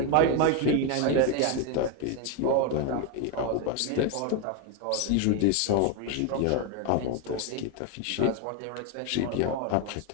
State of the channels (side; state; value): both; different; correlation 0.02